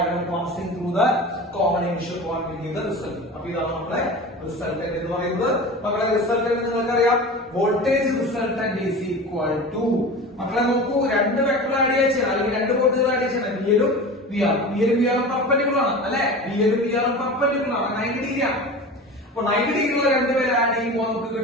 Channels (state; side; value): normal; both; correlation 0.33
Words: passing through the common initial point will give the result. അപ്പൊ ഇതാണ് നമ്മളെ റിസൾട്ടന്റ് എന്ന് പറയുന്നത്. മക്കളെ റിസൾട്ടന്റ് നിങ്ങൾക്കറിയാം, voltage resultant is equal to, മക്കളെ നോക്കൂ, 2 വെക്ടർ ആഡ് ചെയ്യണം അല്ലെങ്കിൽ 2 വോൾട്ടേജ് ആഡ് ചെയ്യണം. വിഎലും വിആറും പെർപെൻഡിക്കുലർ ആണ് അല്ലെ? വിഎലും വിആറും പെർപെൻഡിക്കുലർ ആണ്, 90 ഡിഗ്രി ആണ്. അപ്പൊ 90 ഡിഗ്രിയുള്ള 2 പേര് ആഡ് ചെയ്യുമ്പോൾ നമുക്ക്